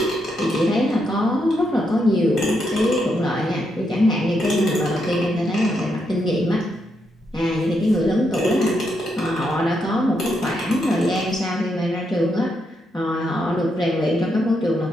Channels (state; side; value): normal; both; correlation 0.80